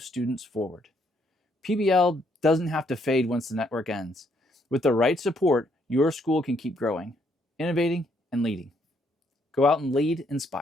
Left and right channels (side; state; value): both; normal; correlation 0.71